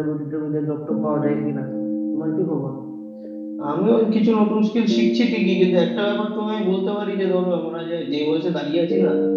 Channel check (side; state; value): both; identical; correlation 1.00